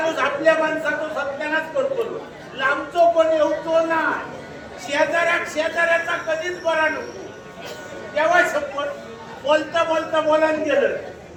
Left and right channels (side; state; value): both; identical; correlation 1.00